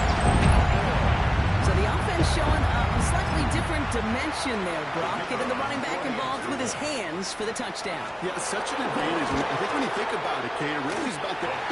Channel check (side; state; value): both; identical; correlation 1.00